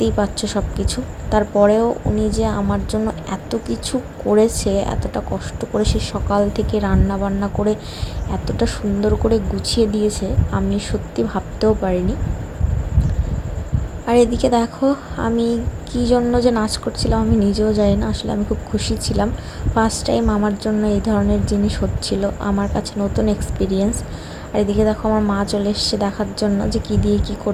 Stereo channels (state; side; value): identical; both; correlation 1.00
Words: পাচ্ছ সব কিছু। তারপরেও উনি যে আমার জন্য এত কিছু করেছে, এতটা কষ্ট করে সে সকাল থেকে রান্না বান্না করে এতটা সুন্দর করে গুছিয়ে দিয়েছে, আমি সত্যি ভাবতেও পারিনি। আর এদিকে দেখো আমি কী জন্য যে নাচ করছিলাম আমি নিজেও জানি না। আসলে আমি খুব খুশি ছিলাম, ফার্স্ট টাইম আমার জন্য এই ধরনের জিনিস হচ্ছিল, আমার কাছে নতুন এক্সপিরিয়েন্স। আর এদিকে দেখো আমার মা চলে এসছে দেখার জন্য যে কী দিয়ে কী